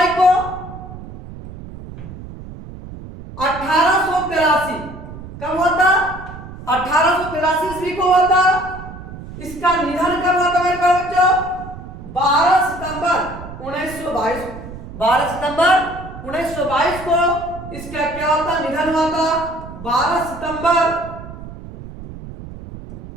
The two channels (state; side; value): noise; right; rumble, 13 dB below the sound